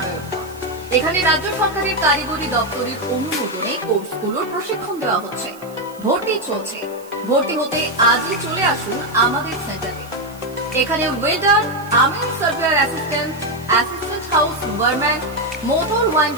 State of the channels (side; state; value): right; noise; hiss, 23 dB below the sound